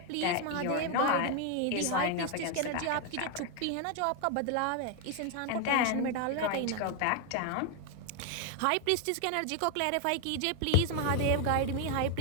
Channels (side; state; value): both; different; correlation 0.01